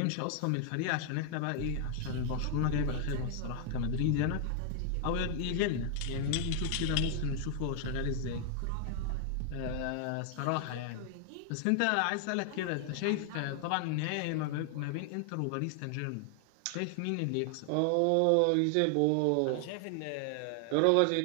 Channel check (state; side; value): different; both; correlation 0.00